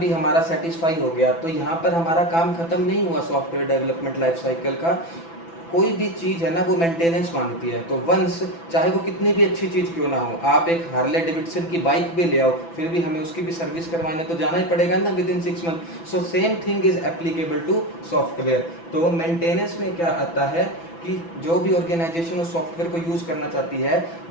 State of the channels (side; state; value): right; late; 6.0 ms